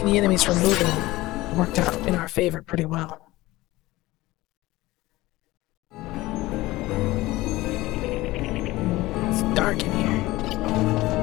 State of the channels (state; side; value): quieter; right; 18.7 dB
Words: the enemies from moving worked out in our favor pretty well. It's dark in here.